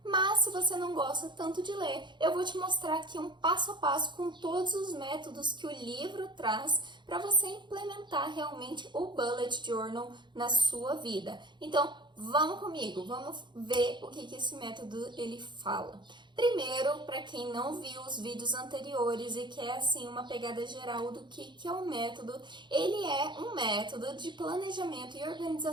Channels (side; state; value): left; late; 0.22 ms